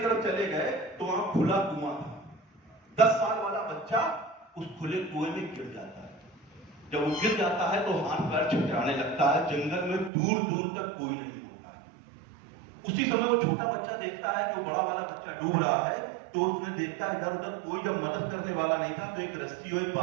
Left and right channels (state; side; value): drops out; left; at 10.1 s